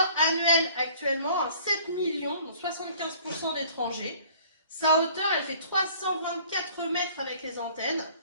annuels actuellement, 7 millions, donc 75% d'étrangers. Sa hauteur, elle fait 324 mètres avec les antennes.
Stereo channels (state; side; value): inverted; both; correlation -0.53